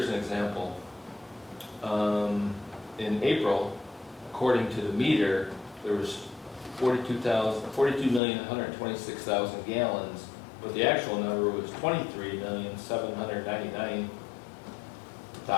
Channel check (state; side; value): drops out; right; at 8.2 s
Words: an example. In April, according to the meter, there was 42,126,000 gallons, but the actual number was